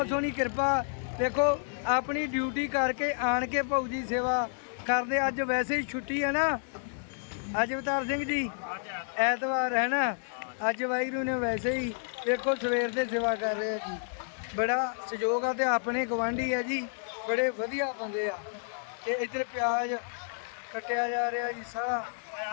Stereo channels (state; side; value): silent; right; digital silence